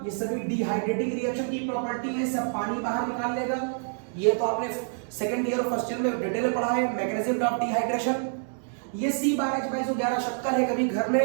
ये सभी डिहाइड्रेटिंग रिएक्शन की प्रॉपर्टी है, सब पानी बाहर निकाल लेगा। ये तो आपने सेकंड ईयर और फर्स्ट ईयर में डिटेल में पढ़ा है, मैकेनिज्म ऑफ डिहाइड्रेशन। ये C12H22O11 शक्कर है, कभी घर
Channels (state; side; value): silent; left; 60 dB below the other